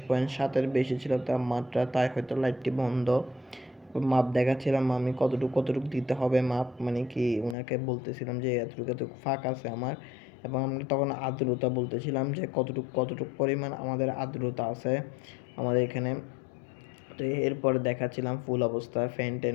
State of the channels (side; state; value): right; drops out; at 7.6 s